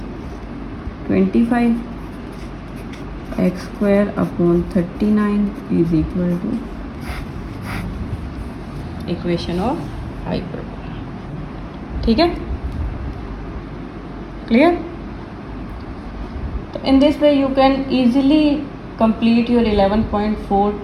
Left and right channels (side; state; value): both; identical; correlation 1.00